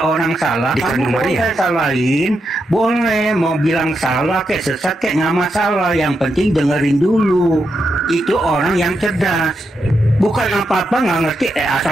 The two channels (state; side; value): normal; both; correlation 0.84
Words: orang salah, kamu boleh salahin, boleh mau bilang salah kayak sesat kayak nggak masalah. Yang penting dengerin dulu. Itu orang yang cerdas. Bukan apa-apa nggak ngerti,